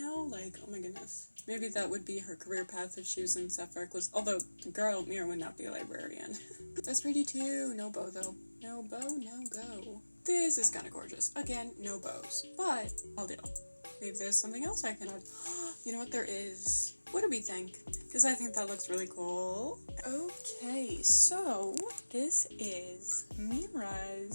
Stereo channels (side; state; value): both; inverted; correlation -1.00